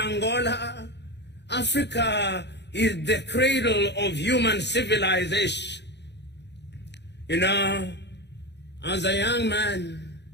Africa is the cradle of human civilization. You know, as a young man,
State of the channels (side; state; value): right; late; 0.50 ms